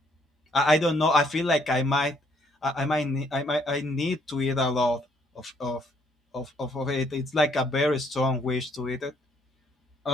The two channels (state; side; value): normal; both; correlation 0.67